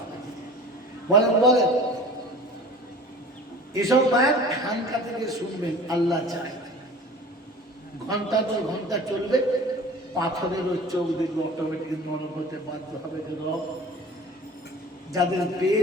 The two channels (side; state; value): both; normal; correlation 0.42